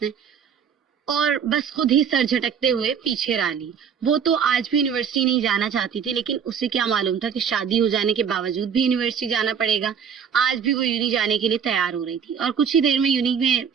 نے, اور بس خود ہی سر جھٹکتے ہوئے پیچھے را لی. وہ تو آج بھی یونیورسٹی نہیں جانا چاہتی تھی لیکن اسے کیا معلوم تھا کہ شادی ہو جانے کے باوجود بھی یونیورسٹی جانا پڑے گا. آج بھی وہ یونی جانے کے لیے تیار ہو رہی تھی اور کچھ ہی دیر میں یونی میں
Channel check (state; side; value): quieter; left; 7.3 dB